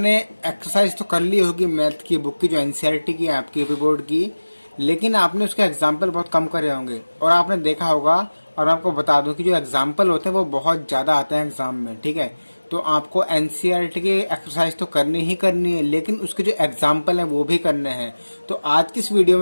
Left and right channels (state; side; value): inverted; both; correlation -1.00